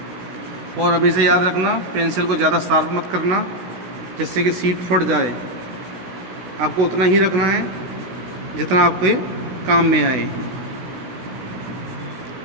और अभी से याद रखना, पेंसिल को ज़्यादा शार्प मत करना जिससे कि सीट फट जाए। आपको उतना ही रखना है जितना आपके काम में आए।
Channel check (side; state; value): left; late; 16 ms